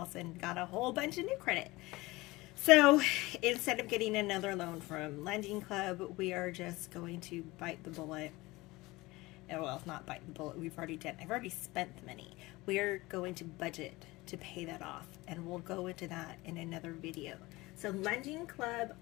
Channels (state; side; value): quieter; right; 21.0 dB